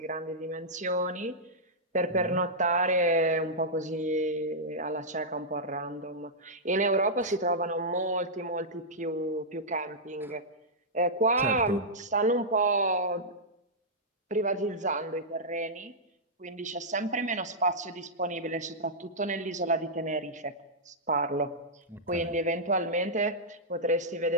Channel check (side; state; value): both; normal; correlation -0.10